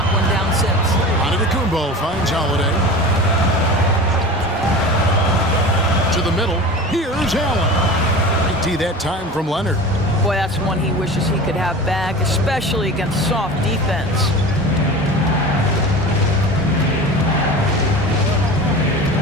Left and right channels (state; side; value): normal; both; correlation 0.34